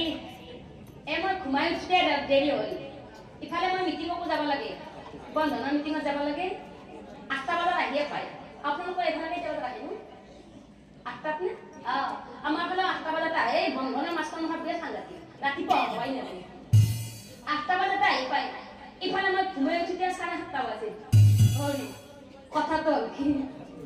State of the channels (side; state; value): both; identical; correlation 1.00